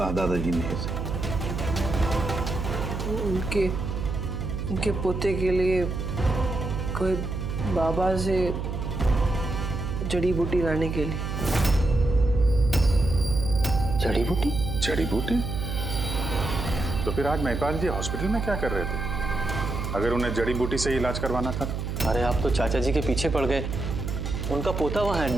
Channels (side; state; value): right; noise; hum, 3 dB below the sound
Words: दादाजी ने ऐसा? उनके पोते के लिए कोई बाबा से जड़ी बूटी लाने के लिए। जड़ी बूटी? जड़ी बूटी? तो फिर आज महिपाल जी हॉस्पिटल में क्या कर रहे थे, अगर उन्हें जड़ी बूटी से इलाज करवाना था? अरे आप तो चाचा जी के पीछे पड़ गए। उनका पोता वहाँ